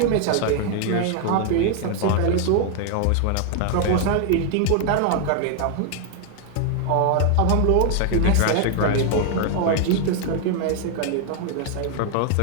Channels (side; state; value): both; different; correlation 0.00